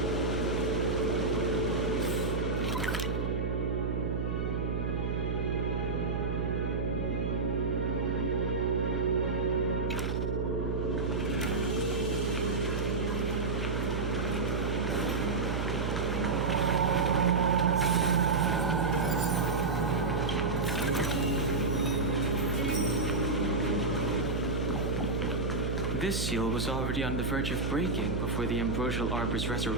This seal was already on the verge of breaking before the Ambrosial Arbor's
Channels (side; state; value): right; noise; hum, 1 dB below the sound